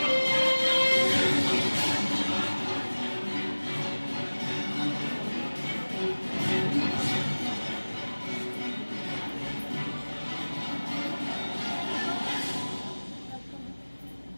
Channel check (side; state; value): both; inverted; correlation -1.00